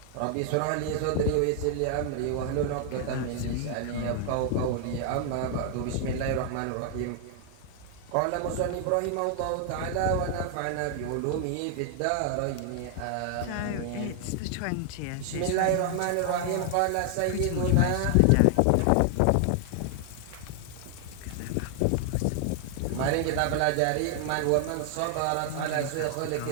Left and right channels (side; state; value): both; different; correlation 0.00